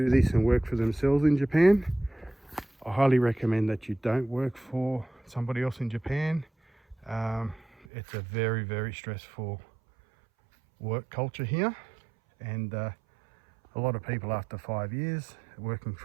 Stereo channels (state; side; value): drops out; left; at 7.9 s